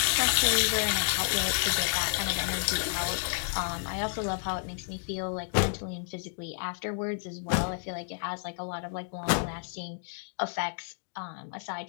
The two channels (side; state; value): right; silent; digital silence